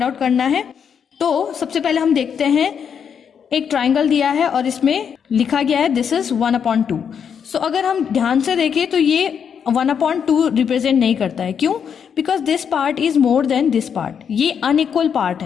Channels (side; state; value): right; quieter; 7.4 dB